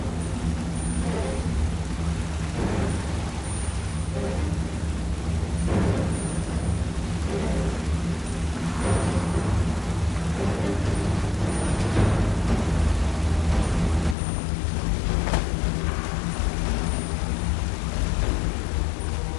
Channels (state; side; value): drops out; right; at 14.2 s